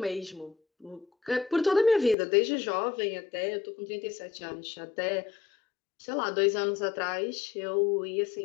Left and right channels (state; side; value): drops out; right; at 2.1 s